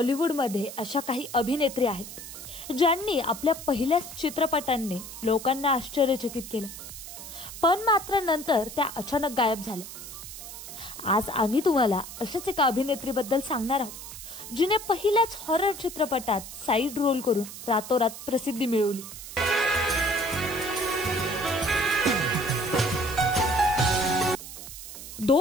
अशा काही अभिनेत्री आहेत ज्यांनी आपल्या पहिल्याच चित्रपटांनी लोकांना आश्चर्यचकित केलं, पण मात्र नंतर त्या अचानक गायब झाल्या। आज आम्ही तुम्हाला अशाच एका अभिनेत्रीबद्दल सांगणार आहोत जिने पहिल्याच हॉरर चित्रपटात साइड रोल करून रातोरात प्रसिद्धी मिळवली।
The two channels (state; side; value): noise; right; hiss, 12 dB below the sound